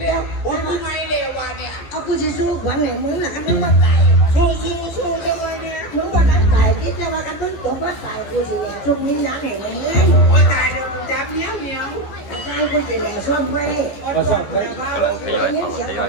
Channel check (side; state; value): right; late; 15 ms